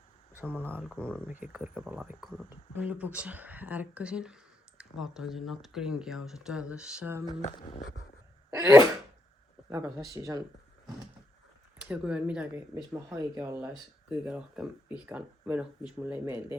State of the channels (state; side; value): normal; both; correlation 0.78